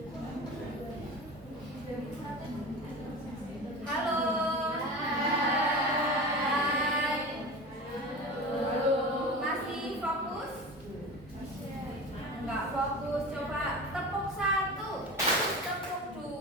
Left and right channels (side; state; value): both; normal; correlation 0.31